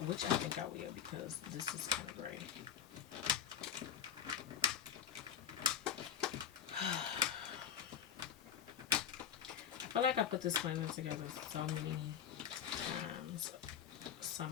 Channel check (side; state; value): right; quieter; 8.7 dB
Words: I think I will because this is kind of gray. I feel like I put this planner together so many times.